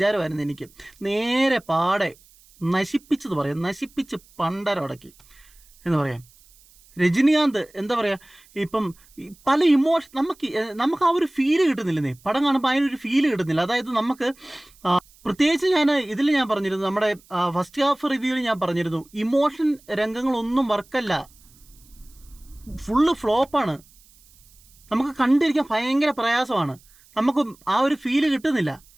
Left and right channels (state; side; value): noise; right; hiss, 28 dB below the sound